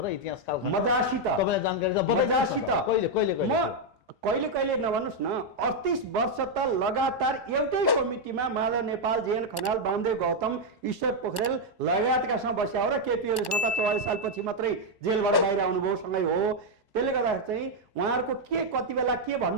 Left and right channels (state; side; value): late; left; 1.1 ms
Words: र इतिहासकाल मजासित तपाईँलाई जानकारी छ? मजासित कहिले कहिले कहिले नभन्नुहोस् न, 38 वर्ष त लगातार एउटै कमिटीमा माधव नेपाल, जेएन खनाल, वामदेव गौतम, ईश्वर पोखरेल लगायतकासँग बस्या हो र केपी ओलीसँग त 44 सालपछि मात्रै जेलबाट बाहिर आउनुभयो सँगै हो। त्यसले गर्दा चाहिँ उहाँहरूको कति बेला के